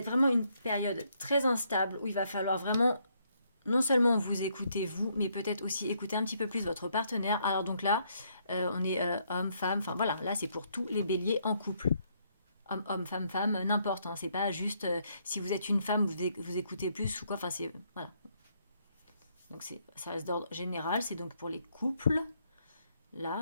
vraiment une période très instable où il va falloir vraiment non seulement vous écoutez vous, mais peut-être aussi écouter un petit peu plus votre partenaire. Alors donc là, on est homme, femme, enfin voilà, là c'est pour tous les béliers en couple. Homme, homme, femme, femme, n'importe. Hein, c'est pas juste si vous êtes une femme, vous écoutez plus ou quoi. Enfin c'est voilà. Donc ça reste d'ordre général. C'est donc pour les couples.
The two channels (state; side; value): inverted; both; correlation -0.72